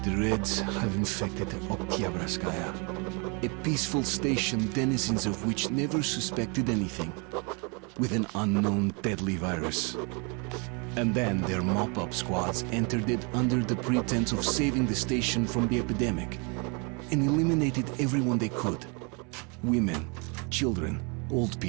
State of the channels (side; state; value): left; quieter; 33.3 dB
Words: The Reds have infected Oktyabrskaya, a peaceful station denizens of which never suspected anything, with an unknown deadly virus. And then their mop-up squads entered it under the pretense of saving the station from the epidemic, and eliminated everyone they could. Women, children, old